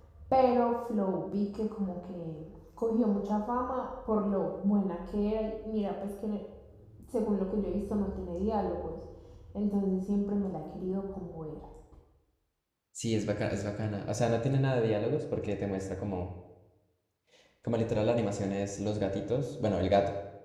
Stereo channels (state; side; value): identical; both; correlation 1.00